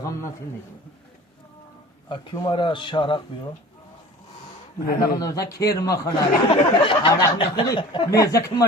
اکیو مرا شارق بیو علاقه نوزا کیر مخوره علاقه نخوری میزه که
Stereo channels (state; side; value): normal; both; correlation 0.42